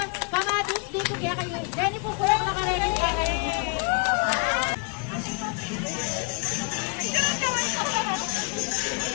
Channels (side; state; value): right; quieter; 33.3 dB